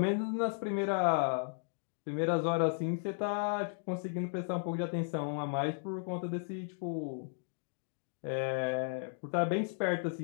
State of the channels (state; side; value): silent; right; digital silence